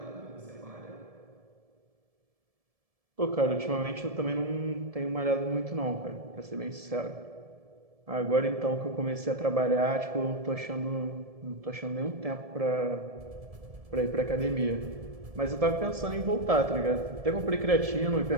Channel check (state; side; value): late; left; 1.7 ms